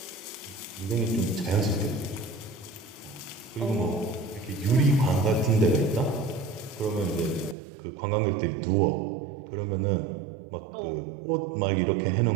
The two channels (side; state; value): left; drops out; at 7.6 s